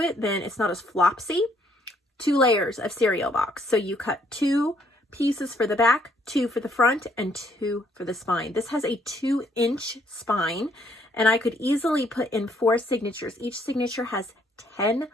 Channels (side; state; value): both; normal; correlation 0.68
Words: then it's not as flopsy. 2 layers of cereal box. So you cut 2 pieces for the back, 2 for the front, and 2 for the spine. This has a 2-inch spine, and I could easily put in 4 signatures. Each signature has 10